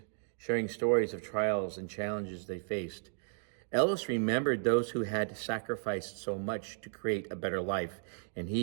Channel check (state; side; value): silent; left; digital silence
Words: sharing stories of trials and challenges they faced. Ellis remembered those who had sacrificed so much to create a better life, and